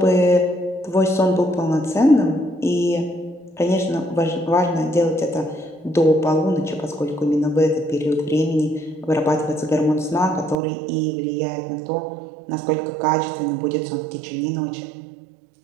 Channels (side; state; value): left; drops out; at 10.6 s